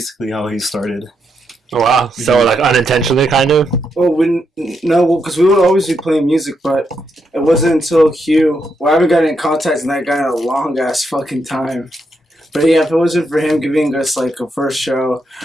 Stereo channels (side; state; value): both; normal; correlation 0.81